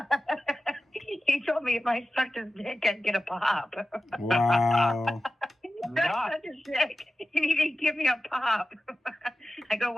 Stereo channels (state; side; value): normal; both; correlation 0.94